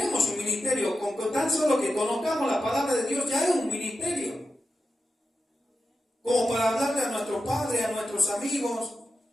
un ministerio. Con tan solo que conozcamos la palabra de Dios ya es un ministerio. Como para hablarle a nuestros padres, a nuestros amigos,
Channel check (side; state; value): both; normal; correlation 0.90